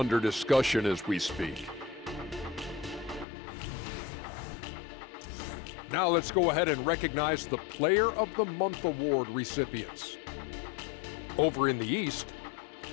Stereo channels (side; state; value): right; drops out; at 3.2 s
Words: discussion as we speak. Now let's go ahead and recognize the Player of the Month award recipients. Over in the East,